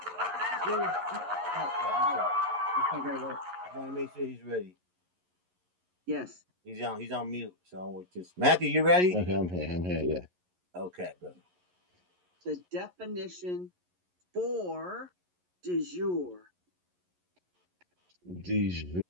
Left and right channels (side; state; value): left; late; 11 ms